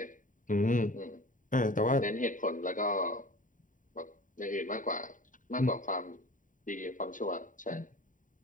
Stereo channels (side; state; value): right; late; 0.38 ms